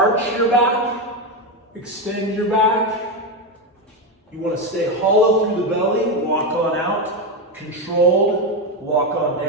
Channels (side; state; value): both; normal; correlation 0.10